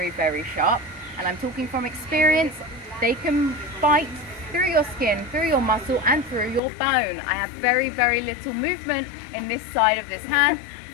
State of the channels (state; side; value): drops out; right; at 6.6 s